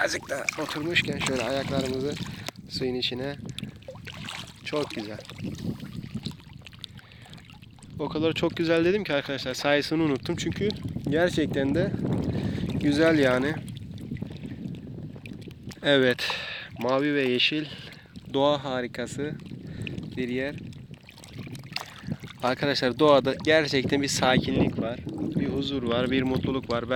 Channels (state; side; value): identical; both; correlation 1.00